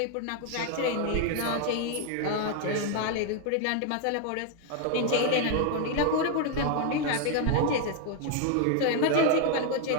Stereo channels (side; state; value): both; different; correlation 0.00